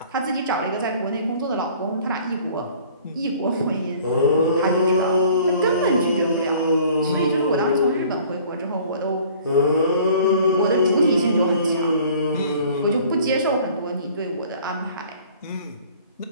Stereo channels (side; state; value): both; inverted; correlation -0.52